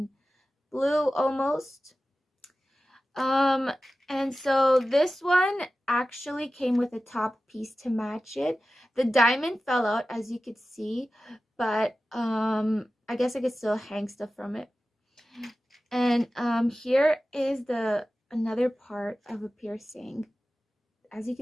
blue almost. And so this one actually came with a top piece to match it. The diamond fell out, as you could see, but I guess I could still hang stuff from it. And here is another part of a piercing. As you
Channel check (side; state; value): both; normal; correlation 0.95